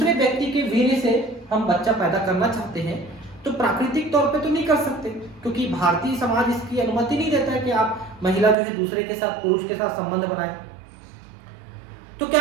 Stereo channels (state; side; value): drops out; left; at 8.6 s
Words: व्यक्ति के वीर्य से हम बच्चा पैदा करना चाहते हैं तो प्राकृतिक तौर पे तो नहीं कर सकते, क्योंकि भारतीय समाज इसकी अनुमति नहीं देता है कि आप महिला जो है दूसरे के साथ, पुरुष के साथ संबंध बनाए। तो